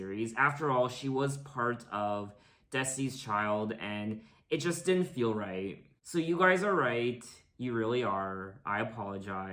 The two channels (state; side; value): identical; both; correlation 1.00